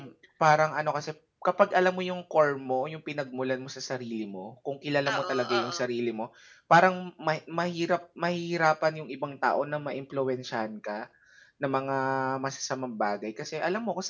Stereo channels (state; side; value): identical; both; correlation 1.00